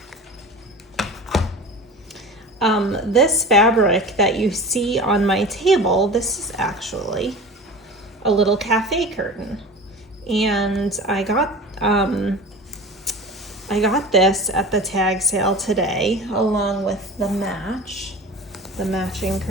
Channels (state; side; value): normal; both; correlation 0.36